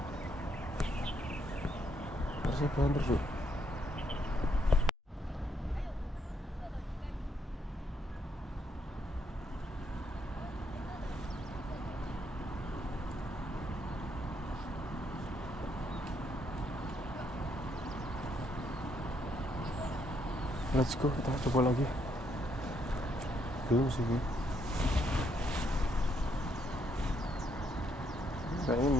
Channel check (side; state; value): both; normal; correlation 0.74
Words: Harusnya banter cuk. Let's go, kita coba lagi. Belum sih. Kayaknya